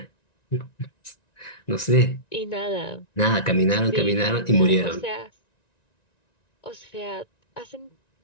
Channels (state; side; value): late; right; 1.9 ms